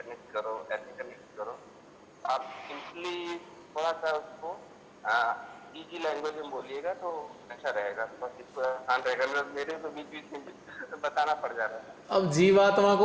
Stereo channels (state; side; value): identical; both; correlation 1.00